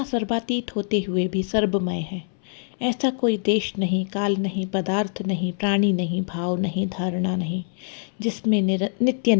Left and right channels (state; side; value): silent; right; 63 dB below the other